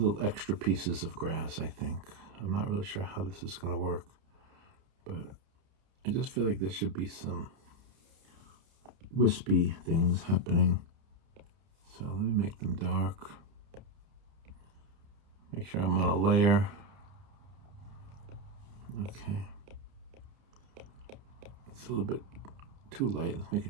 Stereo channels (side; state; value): left; late; 30 ms